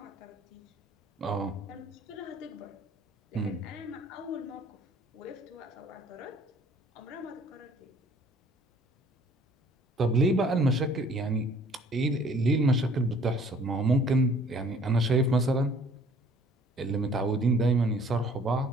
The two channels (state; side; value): normal; both; correlation 0.56